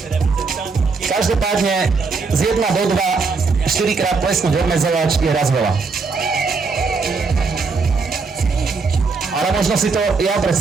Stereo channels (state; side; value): quieter; left; 4.5 dB